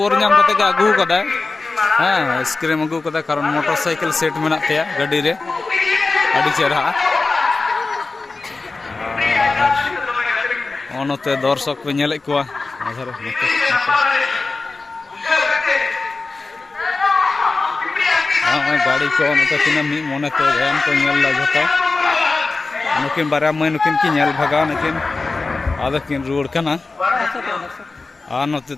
नाम कते आगू कदा हाँ आइसक्रीम आगू कदा कारण मोटरसाइकिल सेट मेना तेया गाड़ी रे अड़ी चेहरा ओनते दर्शक पे नेले को गाड़ी को नते तिना मी मोनेते गान को नेल ला जतो नुकिन बारा मै नुकिन की नेल भगा नकिन आदा किन रोड कना आ नते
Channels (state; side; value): quieter; right; 3.7 dB